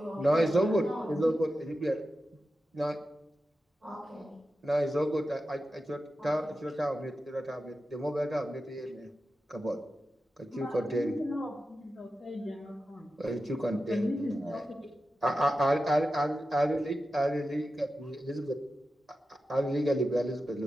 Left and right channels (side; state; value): both; normal; correlation 0.92